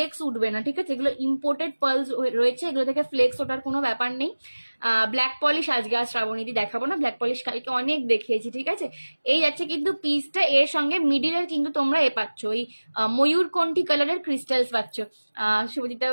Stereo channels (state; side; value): inverted; both; correlation -1.00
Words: উঠবে না, ঠিক আছে? এগুলো ইম্পোর্টেড পার্ল রয়েছে, এগুলো থেকে ফ্লেক্স ওঠার কোনো ব্যাপার নেই। ব্ল্যাক পলিশ আজকে আর শ্রাবণীদি দেখাবো না, ব্ল্যাক পলিশ কালকে অনেক দেখিয়েছি, ঠিক আছে? এই যাচ্ছে কিন্তু পিসটা, এর সঙ্গে মিডিলের কিন্তু তোমরা পাচ্ছ ওই ময়ূরকণ্ঠী কালারের ক্রিস্টালস পাচ্ছ। শুভজিৎ